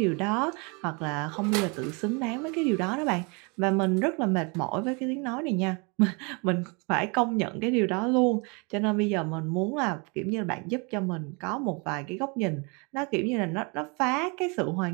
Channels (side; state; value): left; quieter; 31.3 dB